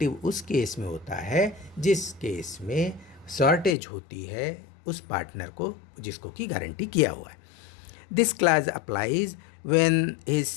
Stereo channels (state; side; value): drops out; right; at 3.8 s